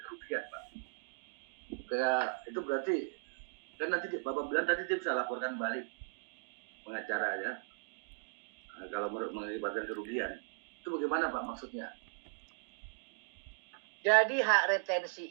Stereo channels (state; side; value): silent; left; digital silence